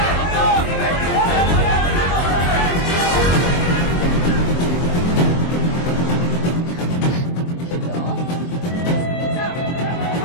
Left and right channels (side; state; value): right; late; 23 ms